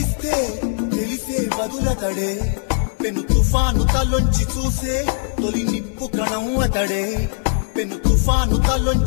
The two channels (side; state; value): right; silent; 60 dB below the other